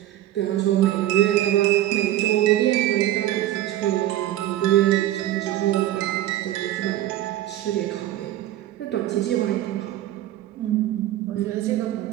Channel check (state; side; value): quieter; left; 13.8 dB